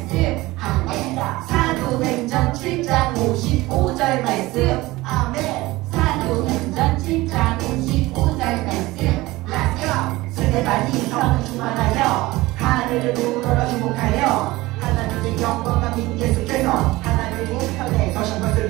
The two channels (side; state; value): left; quieter; 19.6 dB